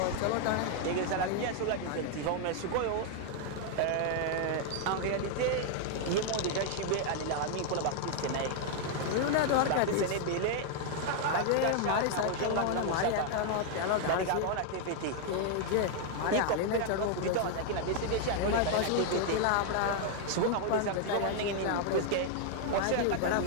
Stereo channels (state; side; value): different; both; correlation 0.00